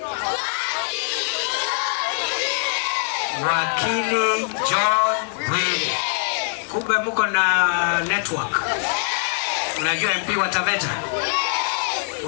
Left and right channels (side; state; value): right; silent; digital silence